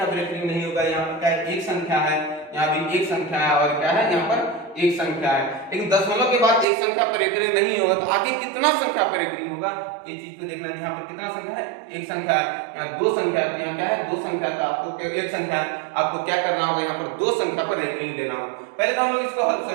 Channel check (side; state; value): left; drops out; at 6.7 s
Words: पर रेकरिंग नहीं होगा, यहाँ पर क्या है, एक संख्या है, यहाँ भी एक संख्या है और क्या है, यहाँ पर एक संख्या है। लेकिन दशमलव के बाद एक संख्या पर रेकरिंग नहीं होगा तो आगे कितना संख्या पर रेकरिंग होगा, ये चीज को देखना है। यहाँ पर कितना संख्या है, एक संख्या है, यहाँ दो संख्या है, यहाँ क्या है, दो संख्या है, तो आपको एक संख्या है, आपको क्या करना होगा, यहाँ पर दो संख्या पर रेकरिंग देना होगा। पहले तो हम लोग इसको